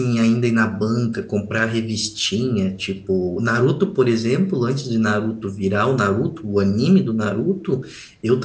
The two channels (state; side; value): identical; both; correlation 1.00